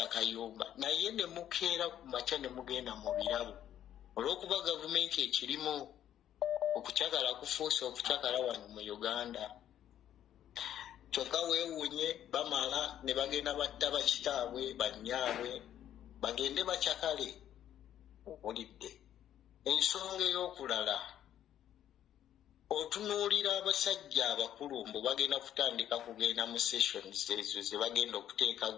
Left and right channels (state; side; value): quieter; right; 11.0 dB